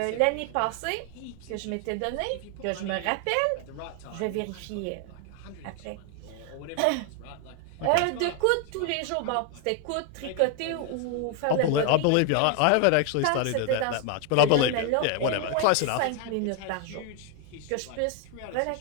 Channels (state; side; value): different; both; correlation 0.01